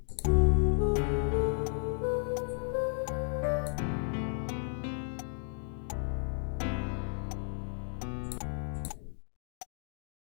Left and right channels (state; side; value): silent; right; 55 dB below the other